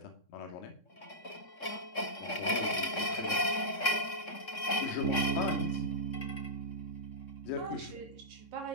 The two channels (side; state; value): right; late; 3.6 ms